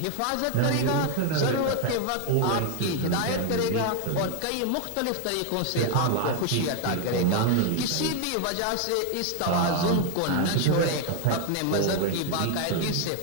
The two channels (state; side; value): different; both; correlation 0.01